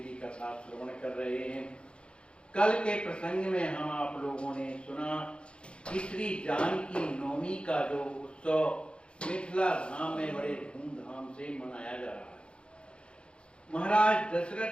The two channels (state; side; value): late; right; 0.056 ms